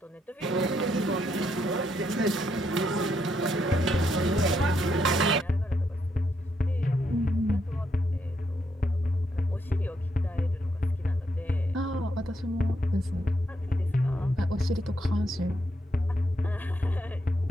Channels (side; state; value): both; normal; correlation 0.78